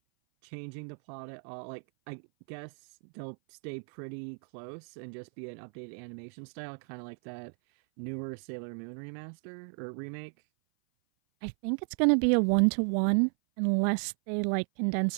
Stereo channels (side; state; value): left; silent; 56 dB below the other